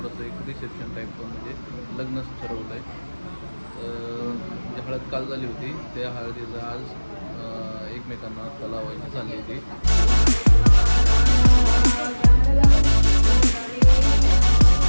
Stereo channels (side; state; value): both; inverted; correlation -1.00